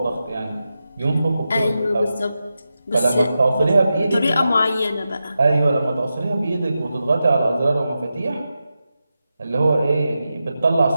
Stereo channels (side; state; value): both; inverted; correlation -0.90